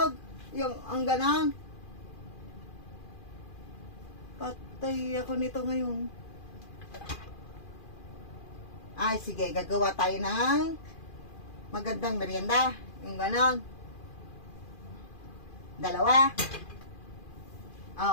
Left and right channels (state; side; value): late; right; 2.4 ms